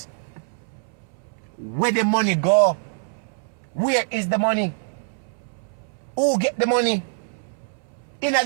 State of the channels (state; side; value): silent; left; 60 dB below the other